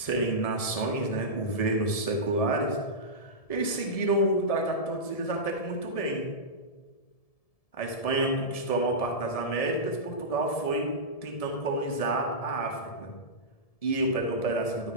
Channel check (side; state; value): right; late; 1.7 ms